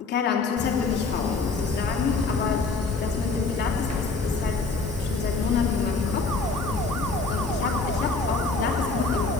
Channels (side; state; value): right; quieter; 4.0 dB